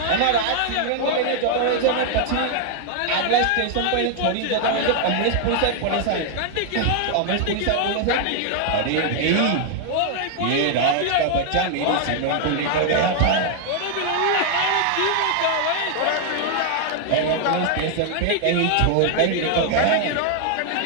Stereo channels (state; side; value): different; both; correlation 0.00